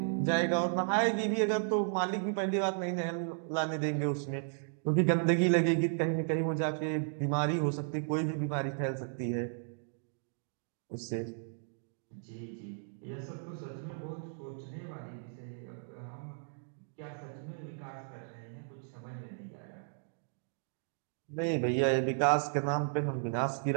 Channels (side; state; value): left; silent; digital silence